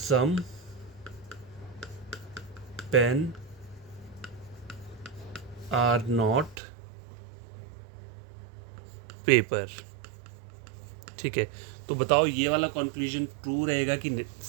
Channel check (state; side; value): drops out; left; at 6.6 s